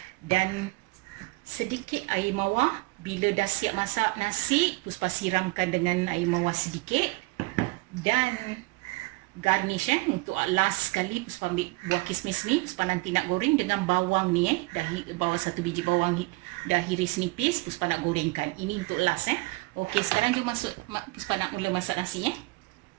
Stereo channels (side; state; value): left; quieter; 24.5 dB